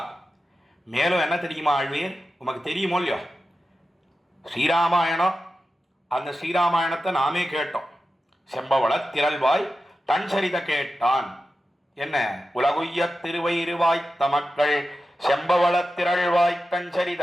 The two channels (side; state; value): both; normal; correlation 0.92